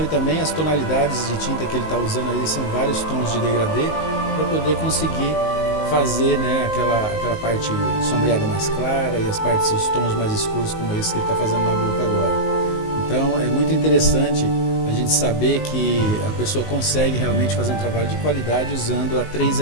também as tonalidades de tinta que ele está usando ali, são vários tons de degradê para poder conseguir fazer, né, aquela parte sombreada mais clara e as partes, os tons mais escuros como esse que ele está fazendo na boca agora. Então é muito interessante a gente saber que a pessoa consegue realmente fazer um trabalho de qualidade usando a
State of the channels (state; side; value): late; right; 19 ms